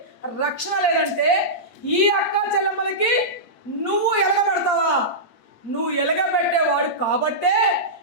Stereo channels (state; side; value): late; right; 8.5 ms